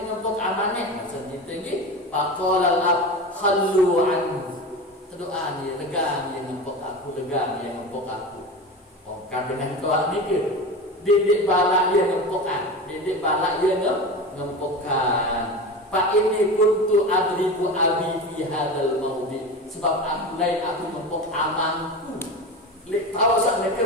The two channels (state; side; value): normal; both; correlation 0.27